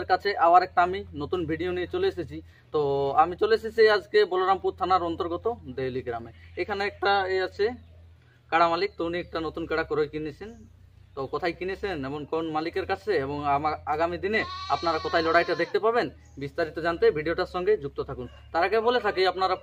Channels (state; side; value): identical; both; correlation 1.00